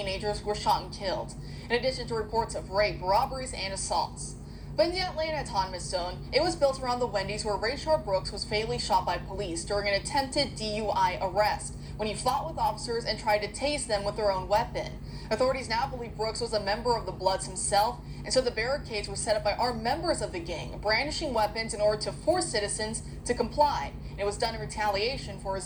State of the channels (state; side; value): identical; both; correlation 1.00